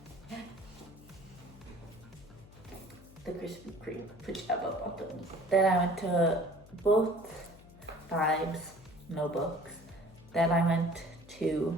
the Krispy Kreme pajama bottoms. Then I went to both Vibes, no books. Then I went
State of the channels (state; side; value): noise; left; hum, 21 dB below the sound